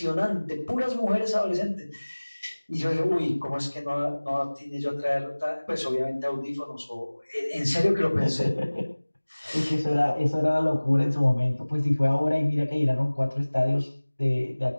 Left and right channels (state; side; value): inverted; both; correlation -1.00